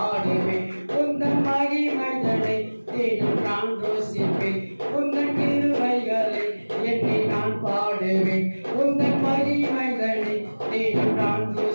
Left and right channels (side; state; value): both; inverted; correlation -1.00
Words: உந்தன் மகிமைகளை தேடும் நான் ரோசிப்பேன். உந்தன் கிருபைகளை எண்ணி நான் பாடுவேன், உந்தன் மகிமைகளை தேடும் நான்